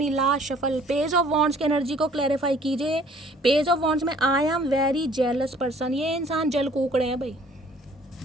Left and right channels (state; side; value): normal; both; correlation 0.56